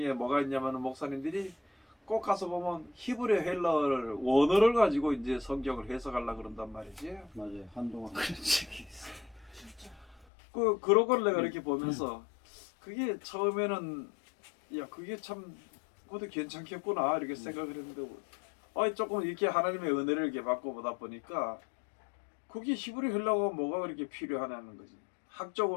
뭐가 있냐면 목사님들이 꼭 가서 보면 히브리 헬라어를 원어를 가지고 이제 성경을 해석하려고 그런단 말이지. 맞아요. 한동안 그런 적이 있어. 그런 걸 내가 이렇게 보면서 그게 처음에는 야 그게 참 그것도 괜찮겠구나 이렇게 생각을 했는데 조금 이렇게 하나님의 은혜를 이렇게 받고 보다 보니까 그게 히브리 헬라어가 뭐가 그렇게 필요하냐는 거지.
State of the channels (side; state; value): right; drops out; at 10.2 s